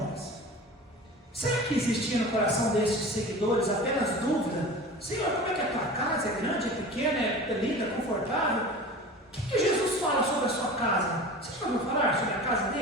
Será que existia no coração desses seguidores apenas dúvida? Senhor, como é que é a tua casa? É grande, é pequena, é linda, é confortável? O que Jesus fala sobre a sua casa? Você já ouviu falar sobre a casa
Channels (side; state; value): both; normal; correlation 0.36